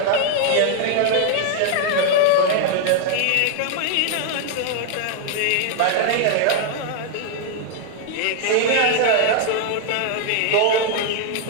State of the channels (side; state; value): both; different; correlation 0.00